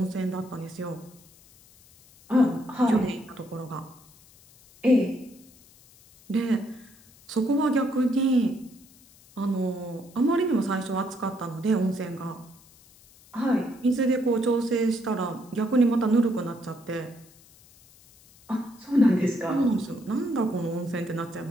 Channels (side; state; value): left; noise; hiss, 26 dB below the sound